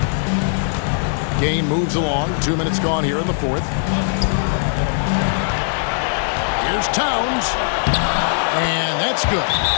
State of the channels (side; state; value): right; silent; digital silence